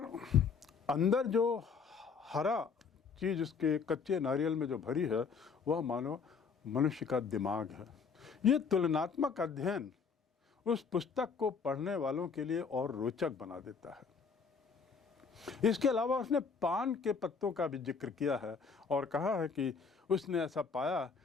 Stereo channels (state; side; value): quieter; right; 5.6 dB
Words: अंदर जो हरा चीज़ उसके कच्चे नारियल में जो भरी है वह मानो मनुष्य का दिमाग है। ये तुलनात्मक अध्ययन उस पुस्तक को पढ़ने वालों के लिए और रोचक बना देता है। इसके अलावा उसने पान के पत्तों का भी जिक्र किया है और कहा है कि उसने ऐसा पाया